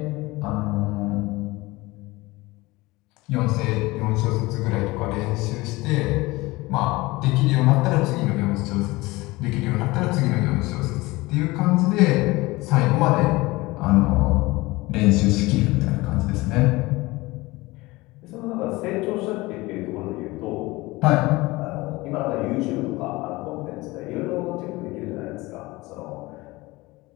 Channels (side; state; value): right; quieter; 21.3 dB